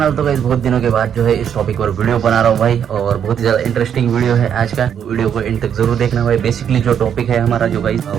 तो गाइस बहुत दिनों के बाद जो है इस टॉपिक पर वीडियो बना रहा हूँ भाई, और बहुत ही ज़्यादा इंटरेस्टिंग वीडियो है आज का। वीडियो को एंड तक जरूर देखना भाई। बेसिकली जो टॉपिक है हमारा जो गाइस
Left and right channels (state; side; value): quieter; left; 8.6 dB